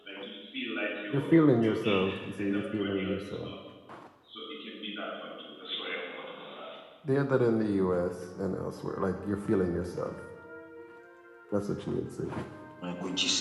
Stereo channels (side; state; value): both; identical; correlation 1.00